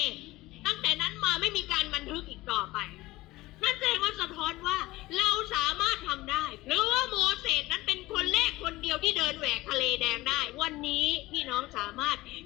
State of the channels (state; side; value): quieter; right; 18.9 dB